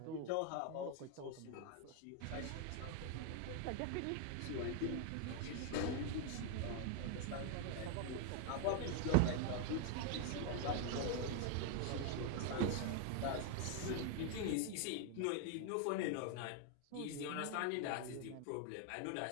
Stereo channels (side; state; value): both; different; correlation 0.00